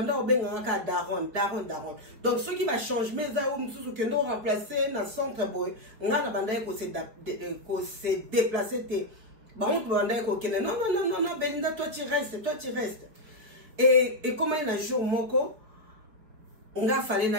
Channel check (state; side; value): late; left; 4.9 ms